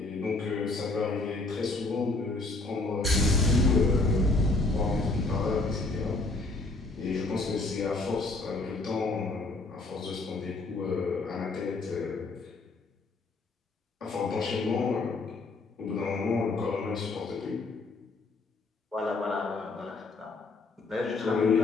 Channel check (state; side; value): quieter; right; 3.3 dB